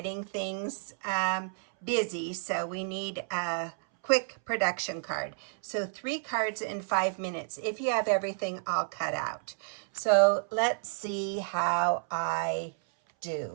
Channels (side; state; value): left; silent; 57 dB below the other